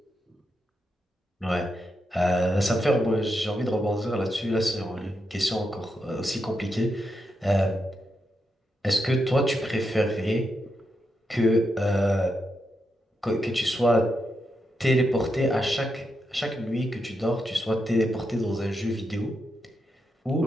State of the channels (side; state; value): both; normal; correlation 0.84